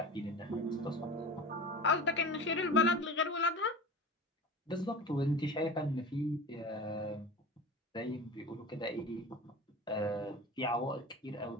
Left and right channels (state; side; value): normal; both; correlation 0.34